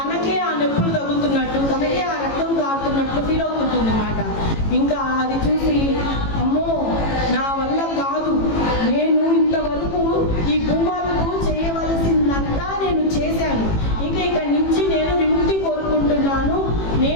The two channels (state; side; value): late; right; 18 ms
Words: ఆ నొప్పులు తగులుతున్నట్టు, తనకే ఆ రక్తం కారుతున్నట్టు ఫీల్ అవుతుంటుంది మాట. ఇంకా అది చూసి అమ్మో నా వల్ల కాదు, నేను ఇంతవరకు ఈ భూమాతకు చేయవలసిందంతా నేను చేశాను, ఇక్కడి నుంచి నేను విముక్తి కోరుకుంటున్నాను,